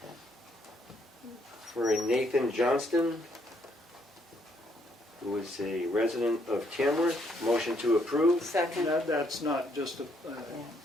for a Nathan Johnston, who is a resident of Tamworth. Motion to approve. Second. That's not just a,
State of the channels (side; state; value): both; normal; correlation 0.71